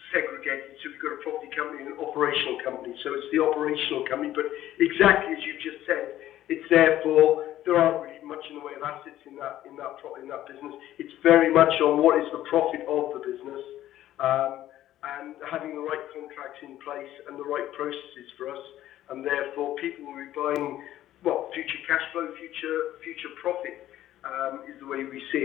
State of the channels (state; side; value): quieter; right; 13.3 dB